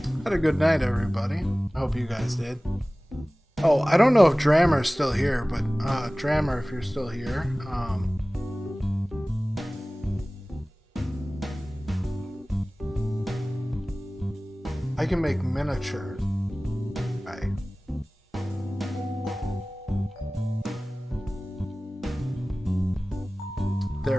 Had a good night, everybody. I hope you guys did. Oh, I don't know if Drammer's still here, but Drammer, if you're still here, I can make miniatures. Okay.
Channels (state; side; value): normal; both; correlation 0.98